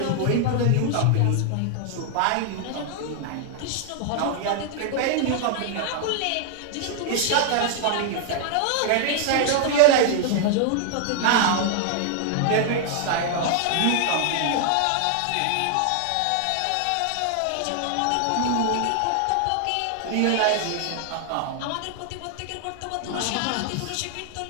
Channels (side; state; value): both; different; correlation 0.00